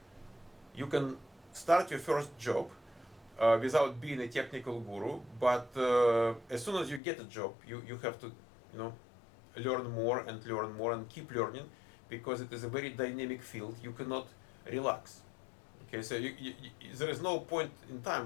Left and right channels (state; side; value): drops out; right; at 7.0 s